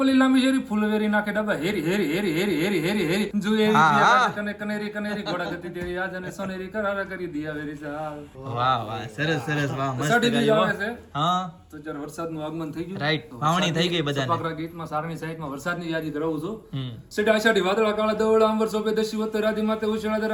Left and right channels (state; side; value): identical; both; correlation 1.00